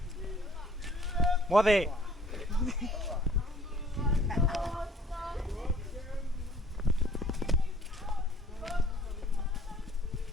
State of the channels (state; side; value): normal; both; correlation 0.55